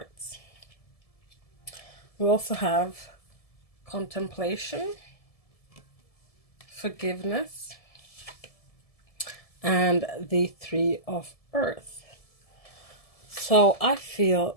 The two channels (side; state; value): right; late; 1.7 ms